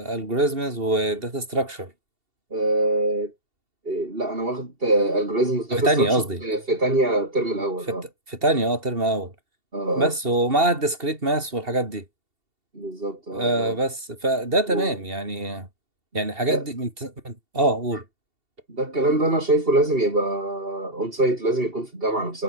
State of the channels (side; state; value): left; late; 2.7 ms